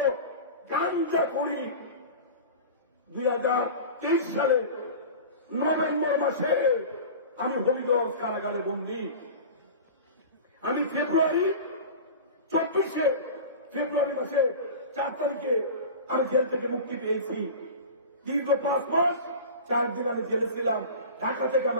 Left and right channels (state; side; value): inverted; both; correlation -0.33